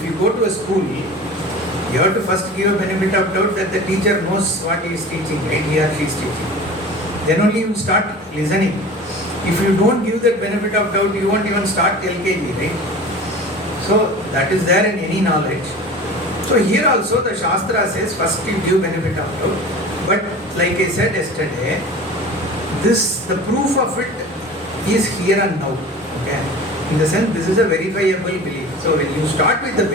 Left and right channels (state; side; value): normal; both; correlation 0.37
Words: you go to a school, you have to first give a benefit of doubt that the teacher knows what he is teaching, right? He or she is teaching. Then only you start listening. If you don't give that benefit of doubt, you won't even start LKG, right? So that is there in any knowledge. So here also the Shastra says first you give benefit of doubt. But like I said yesterday, the proof of it is here and now. Okay? In the sense, this is a verifiable belief. So when you start with the